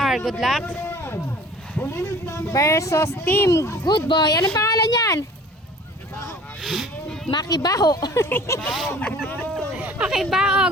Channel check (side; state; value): both; normal; correlation 0.47